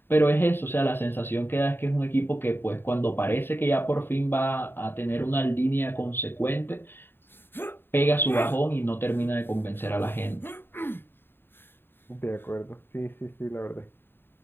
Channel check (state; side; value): late; right; 0.10 ms